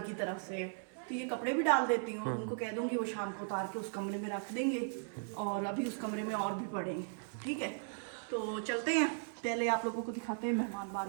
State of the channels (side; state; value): left; silent; 53 dB below the other